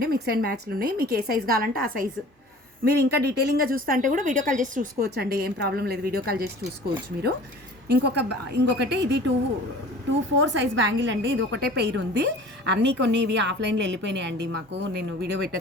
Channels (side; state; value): both; normal; correlation 0.44